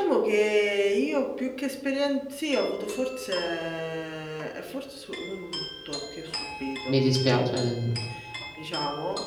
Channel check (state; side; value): identical; both; correlation 1.00